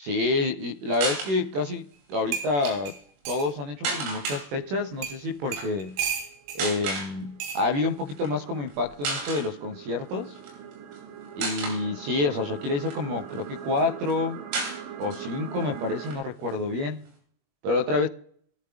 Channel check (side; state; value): left; late; 21 ms